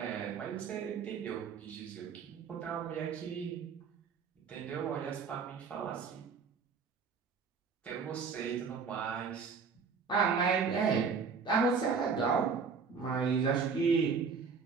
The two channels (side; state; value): left; quieter; 5.5 dB